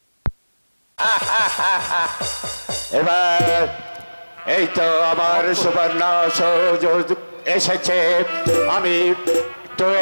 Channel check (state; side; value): inverted; both; correlation -1.00